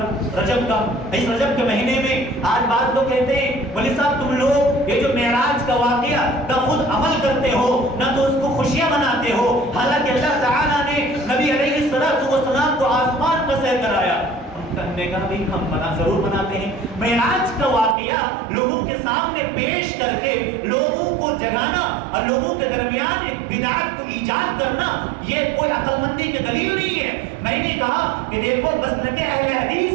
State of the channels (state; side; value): drops out; left; at 17.9 s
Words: رجب کا، اس رجب کے مہینے میں آج بعض لوگ کہتے ہیں ولی صاحب تم لوگ یہ جو معراج کا واقعہ نہ خود عمل کرتے ہو نہ تو اس کو خوشیاں مناتے ہو، حالانکہ اللہ تعالیٰ نے نبی علیہ السلام کو آسمان کا سیر کرایا۔ ہم نے کہا بھی ہم ضرور مناتے ہیں، معراج کا واقعہ لوگوں کے سامنے پیش کر کے لوگوں کو جگانا اور لوگوں کے درمیان ایک بدعت کو ایجاد کرنا، یہ کوئی عقل مندی کی دلیل نہیں ہے۔ میں نے کہا کہ دیکھو مسلک اہل